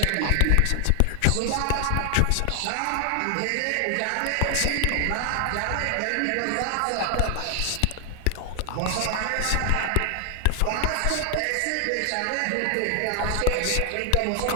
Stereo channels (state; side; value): different; both; correlation 0.00